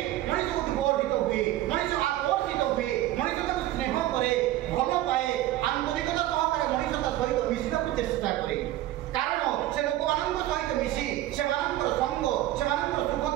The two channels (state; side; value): quieter; left; 14.7 dB